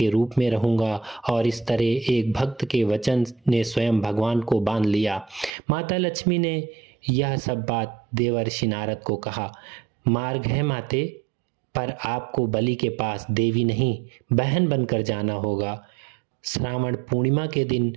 रूप में रहूंगा। और इस तरह एक भक्त के वचन ने स्वयं भगवान को बांध लिया। माता लक्ष्मी ने यह सब बात देवर्षि नारद को कहा। मार्ग है माते, पर आपको बलि के पास देवी नहीं, बहन बनकर जाना होगा। श्रावण पूर्णिमा के दिन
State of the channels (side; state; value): left; drops out; at 5.5 s